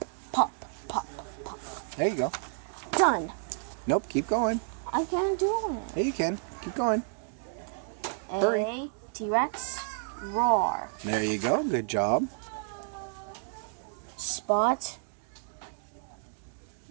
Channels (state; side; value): silent; left; digital silence